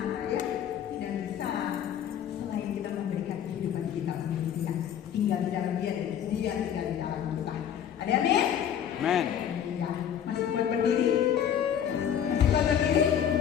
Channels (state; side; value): quieter; right; 9.2 dB